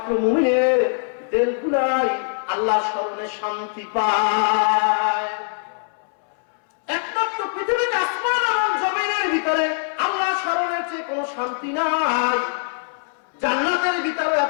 মুমিনের দিলগুলাই আল্লাহর স্মরণে শান্তি পায়। একমাত্র পৃথিবীতে আসমান এবং জমিনের ভিতরে আল্লাহর স্মরণের চেয়ে কোনো শান্তি নাই। জান্নাতের ভিতরে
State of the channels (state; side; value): silent; right; 64 dB below the other